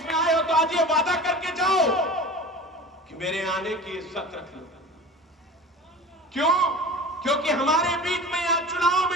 में आए हो तो आज ये वादा करके जाओ कि मेरे आने की इज्जत रख लो। क्यों? क्योंकि हमारे बीच में यहां चुनाव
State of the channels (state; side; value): normal; both; correlation 0.36